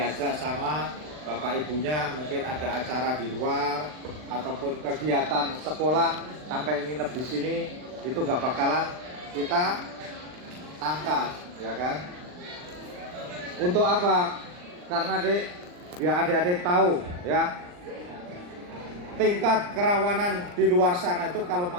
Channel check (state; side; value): late; left; 39 ms